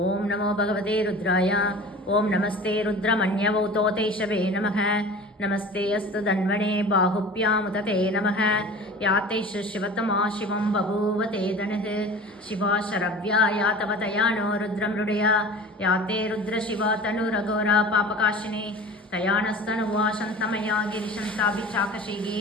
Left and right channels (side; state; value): both; normal; correlation 0.38